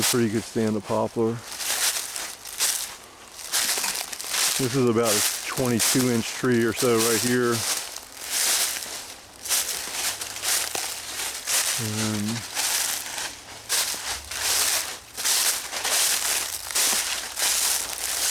pretty good stand of poplar. This is about a 22-inch tree or so right here. And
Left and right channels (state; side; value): identical; both; correlation 1.00